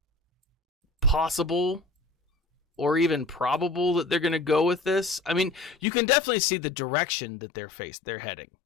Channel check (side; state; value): right; drops out; at 5.8 s